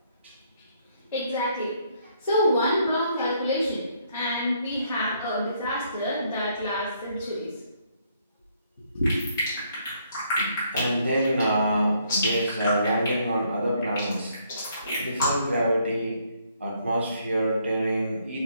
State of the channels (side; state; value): both; inverted; correlation -0.69